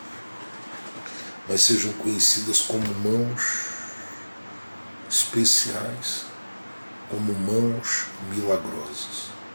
mas sejam conhecidas como mãos especiais, como mãos milagrosas.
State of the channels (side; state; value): both; inverted; correlation -1.00